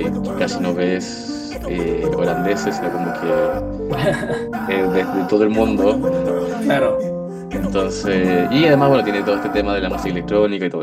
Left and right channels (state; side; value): identical; both; correlation 1.00